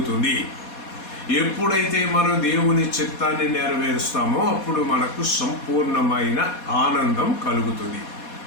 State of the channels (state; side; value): late; right; 4.2 ms